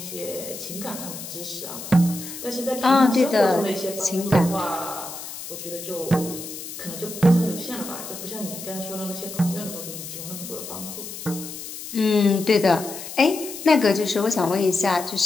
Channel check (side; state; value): left; noise; hiss, 10 dB below the sound